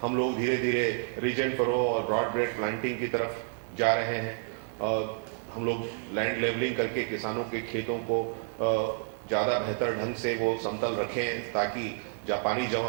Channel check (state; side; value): silent; left; 58 dB below the other